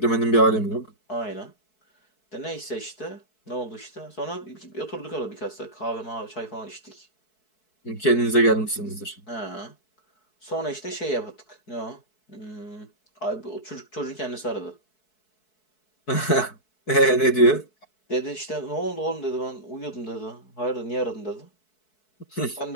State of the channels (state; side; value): late; right; 4.6 ms